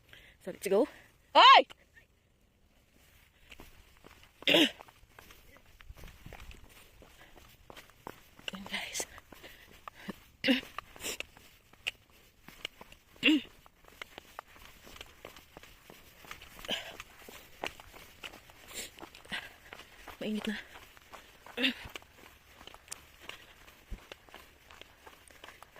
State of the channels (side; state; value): both; identical; correlation 1.00